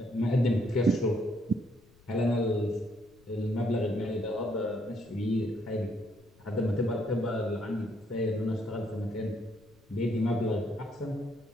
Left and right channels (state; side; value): noise; left; rumble, 29 dB below the sound